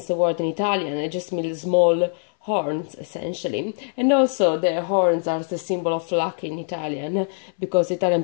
the word in Italian. It just means small horns essentially, and also the horns are the symbol of luck in Italian because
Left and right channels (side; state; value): right; silent; 61 dB below the other